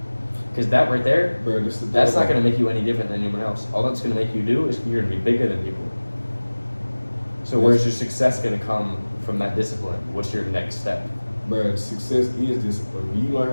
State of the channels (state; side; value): inverted; both; correlation -1.00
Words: Because that right there, Bro, that's not going to make you any different than anyone else. All that's going to make you do is you're going to be bigger than people. So where's your success gonna come from that discipline? What's your next step? But success is discipline. When you learn how